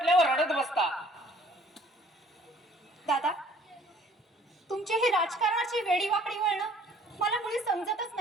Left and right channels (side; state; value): both; normal; correlation 0.56